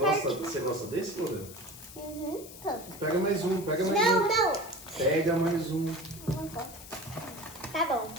Você gosta desse, Lorena? Tá. Pega mais um, pega mais Não. um. Pega mais um. Tá bom.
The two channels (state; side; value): noise; left; hiss, 16 dB below the sound